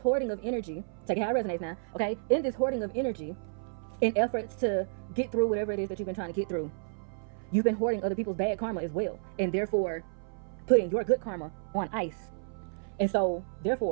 of energy, take it how it resonates now, okay? In this hoarding of energy, in efforts to get through whatever it is that you've been trying to get through, you've been hoarding other people's bad karma as well, and therefore putting your good karma on ice. And so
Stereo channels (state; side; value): silent; left; 57 dB below the other